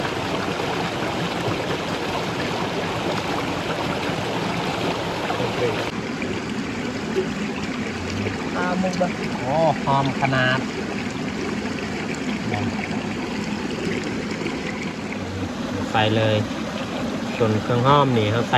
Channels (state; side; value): identical; both; correlation 1.00